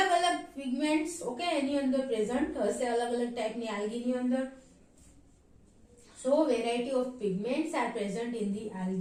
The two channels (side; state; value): both; identical; correlation 1.00